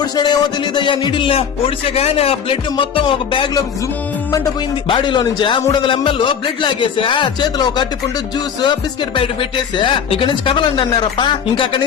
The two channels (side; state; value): right; quieter; 7.5 dB